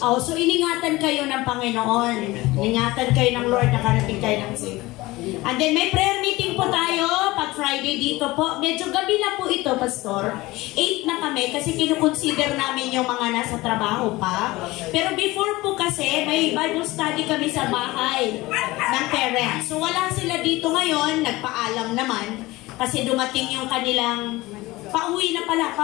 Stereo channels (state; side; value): quieter; right; 19.9 dB